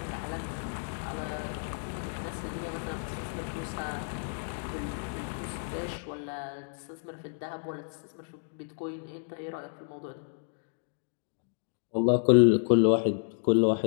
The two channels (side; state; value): right; silent; digital silence